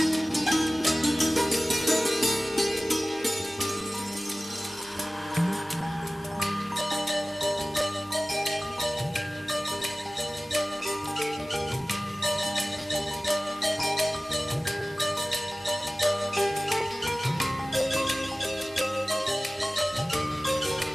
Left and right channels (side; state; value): both; normal; correlation 0.97